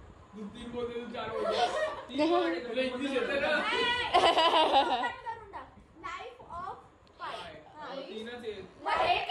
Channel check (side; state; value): both; identical; correlation 1.00